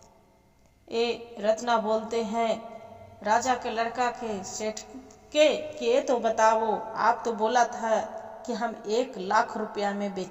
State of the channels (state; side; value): identical; both; correlation 1.00